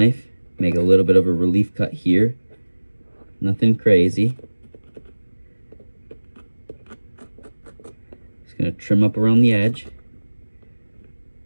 make a little bit of a relief cut here. Nothing crazy. Just gonna trim up around the edge.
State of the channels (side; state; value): both; inverted; correlation -1.00